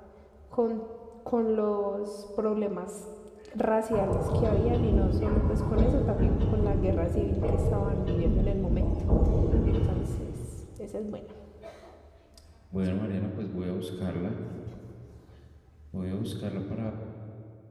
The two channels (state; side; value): identical; both; correlation 1.00